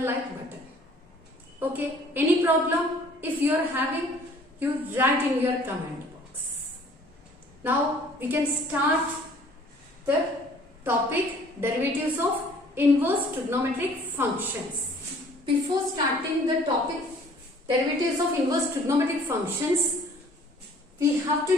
button. Okay, any problem? If you are having, you write in your comment box. Now we can start the topic derivatives of inverse trigonometric functions. Before starting the topic derivatives of inverse trigonometric functions, we have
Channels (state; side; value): normal; both; correlation 0.54